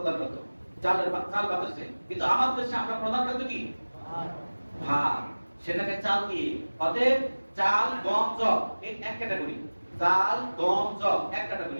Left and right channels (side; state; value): both; inverted; correlation -1.00